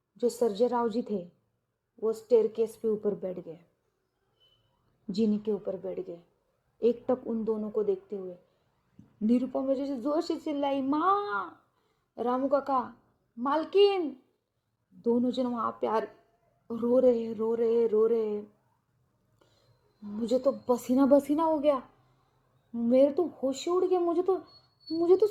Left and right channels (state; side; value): identical; both; correlation 1.00